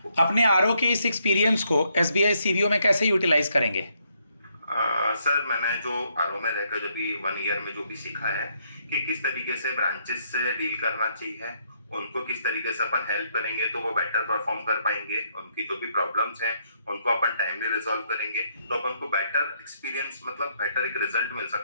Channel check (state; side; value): inverted; both; correlation -0.73